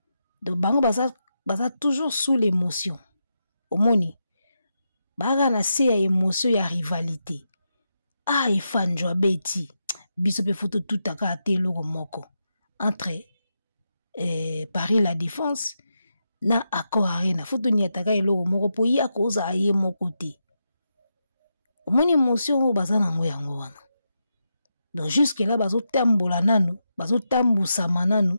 Donc bango baza toujours sous l'émotion. Omoni baga na se ya émotion ya rivalité. Ah ifanjwa beti biso pe photo tout aka te loko moko entre Paris la Défense na Accor Arena photo ni ataka eloko moko po ya koza aye moko te. Omoni émotion o baza na ngo yango wana. Donc jusque là bazo tambola nanu, bazo tambusa mananu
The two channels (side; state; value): both; inverted; correlation -0.86